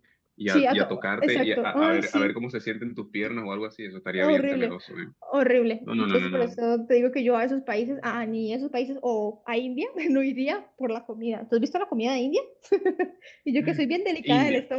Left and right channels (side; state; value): both; identical; correlation 1.00